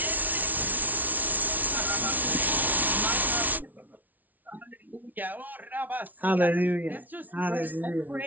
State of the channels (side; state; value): left; late; 0.078 ms